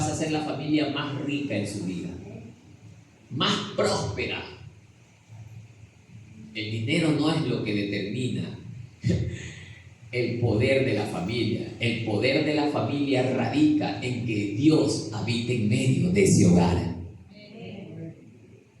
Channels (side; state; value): both; identical; correlation 1.00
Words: a ser la familia más rica en su vida, más próspera. El dinero no es lo que determina el poder de la familia. El poder de la familia radica en que Dios habite en medio de ese hogar.